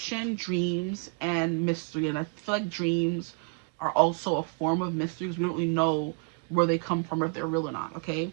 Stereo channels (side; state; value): left; quieter; 37.6 dB